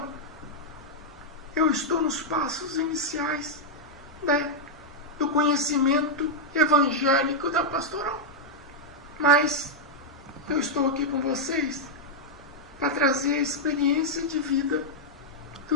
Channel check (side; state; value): both; normal; correlation -0.03